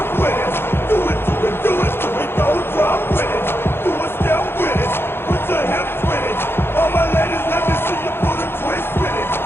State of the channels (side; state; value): right; late; 0.11 ms